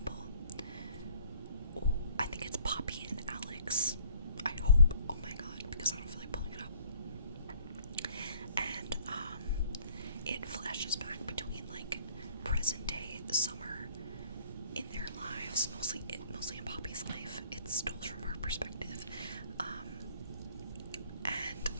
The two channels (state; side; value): inverted; both; correlation -0.58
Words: Oh, I think it's Poppy and Alex, I hope. Oh my god, because I don't feel like pulling it up. And it flashes back between like present day summer in their lives, mostly in Poppy's life. It's told from her perspective,